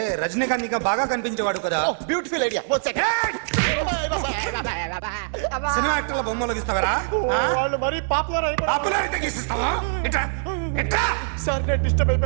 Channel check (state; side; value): silent; left; 63 dB below the other